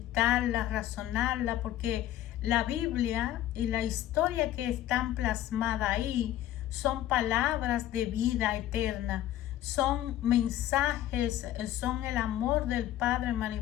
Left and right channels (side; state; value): right; quieter; 13.1 dB